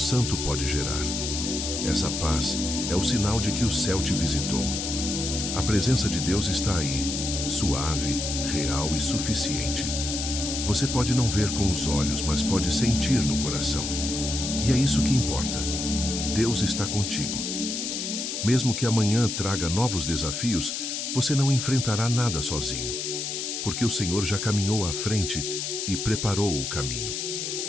pode gerar. Essa paz é o sinal de que o céu te visitou. A presença de Deus está aí, suave, real e suficiente. Você pode não ver com os olhos, mas pode sentir no coração. E é isso que importa. Deus está contigo. Mesmo que amanhã traga novos desafios, você não enfrentará nada sozinho, porque o Senhor já caminhou à frente e preparou o caminho.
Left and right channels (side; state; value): left; noise; hiss, 3 dB below the sound